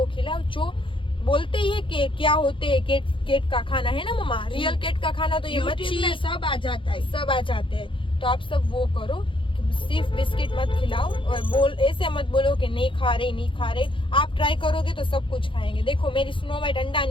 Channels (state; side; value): late; right; 0.25 ms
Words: खिलाओ। जो बोलते ही है कि क्या होते है केट का खाना, है ना मम्मा, रियल केट का खाना तो ये मच्छी में सब आ जाता है, सब आ जाते हैं। तो आप सब वो करो, सिर्फ बिस्किट मत खिलाओ। और ऐसे मत बोलो कि नहीं खा रहे। आप ट्राई करोगे तो सब कुछ खाएंगे। देखो मेरी स्नो वाइट अंडा